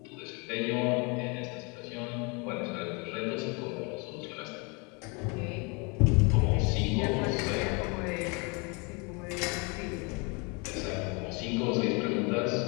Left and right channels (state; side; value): quieter; right; 31.1 dB